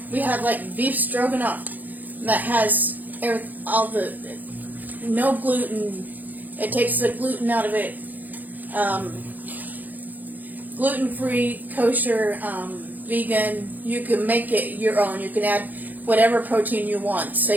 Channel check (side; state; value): left; late; 0.083 ms